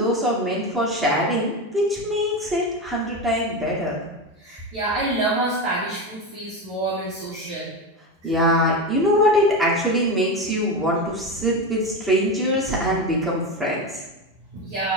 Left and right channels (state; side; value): normal; both; correlation 0.18